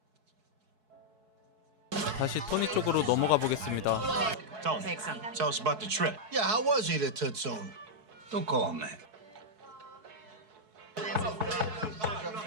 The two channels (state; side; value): late; left; 4.7 ms